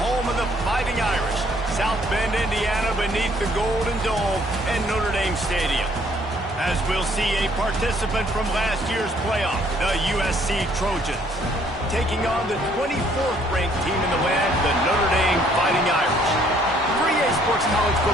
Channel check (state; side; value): normal; both; correlation 0.63